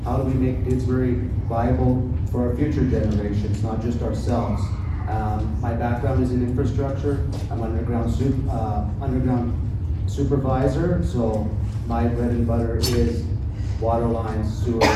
How do we make Didsbury viable for our future generations, not just ourselves? My background is in infrastructure. I'm underground supervisor, so my bread and butter is water lines, sewer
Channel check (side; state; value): both; identical; correlation 1.00